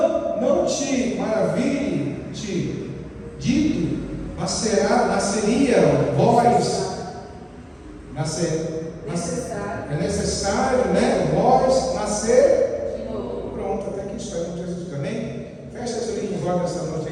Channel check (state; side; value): identical; both; correlation 1.00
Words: te maravilhe, te dito, nasceria vós, é necessário, né? Vós nascer de novo. Pronto, até aqui está em Jesus também. Fecha os olhos nessa noite